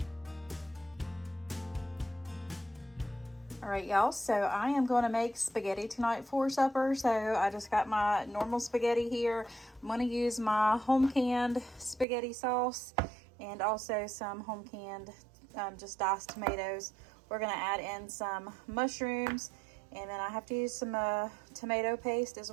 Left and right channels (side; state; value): left; drops out; at 12.1 s